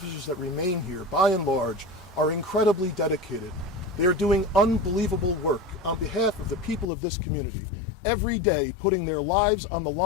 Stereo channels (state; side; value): drops out; right; at 6.9 s